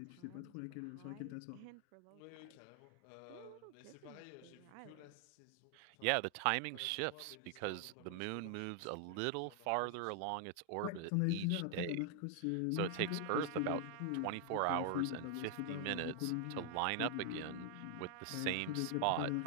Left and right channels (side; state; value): both; different; correlation 0.00